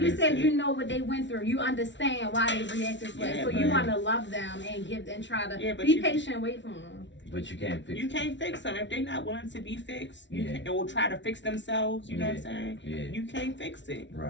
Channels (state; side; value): late; right; 0.53 ms